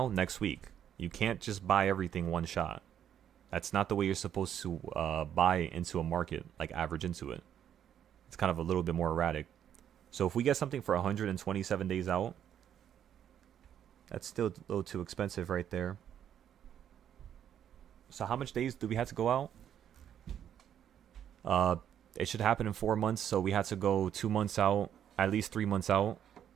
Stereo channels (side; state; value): left; quieter; 9.7 dB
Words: next week. You can't just buy everything one shot. That's not the way you're supposed to buy into a market, like average into it. It's kind of a little bit more erratic. So if we get something for 127 days out, that's still a little too expensive right there. So how much days do we have to go out? It should happen in 4 months, so we had to go 2 months out, at least 3 months out,